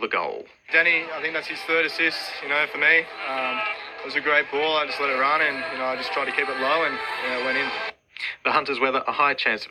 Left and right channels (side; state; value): both; identical; correlation 1.00